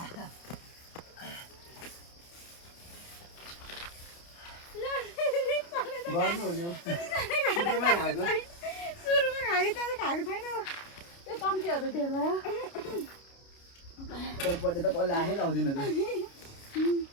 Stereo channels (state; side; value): late; right; 29 ms